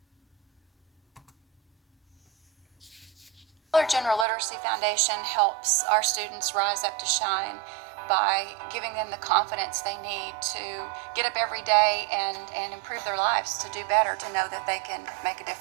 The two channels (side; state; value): left; drops out; at 4.2 s